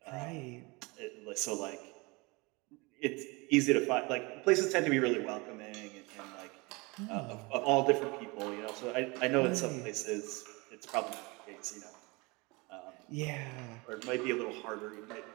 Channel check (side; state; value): left; quieter; 26.2 dB